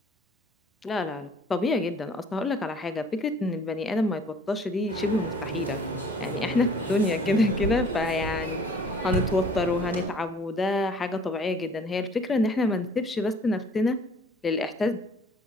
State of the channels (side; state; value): both; normal; correlation 0.53